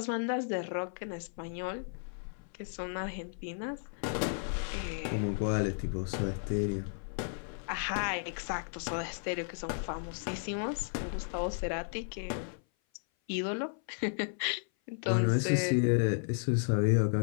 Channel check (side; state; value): right; silent; 55 dB below the other